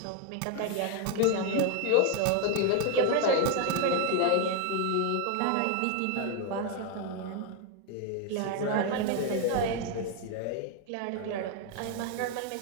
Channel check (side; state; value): both; different; correlation 0.01